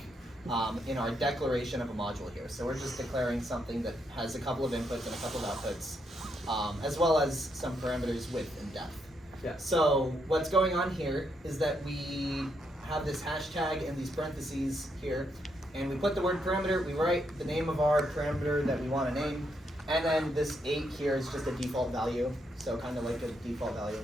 in our declaration of a module here. So we're just declaring something that has a couple of inputs and a couple of outputs, as well as some parameters width and depth. Yeah. So what's going on here is that we have this hashtag and these parentheses here, and we put the word parameter, we write the name of our parameter that we want to name, and then this 8 here is just a default value, so kind of like a default value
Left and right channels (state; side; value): normal; both; correlation 0.78